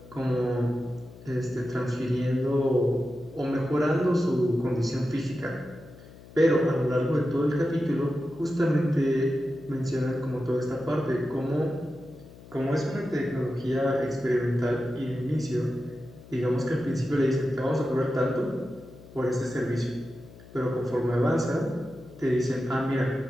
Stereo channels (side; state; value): left; noise; hum, 19 dB below the sound